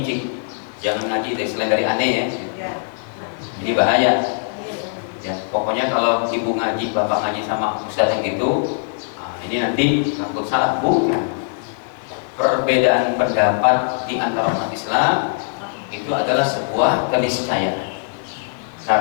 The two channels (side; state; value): right; silent; digital silence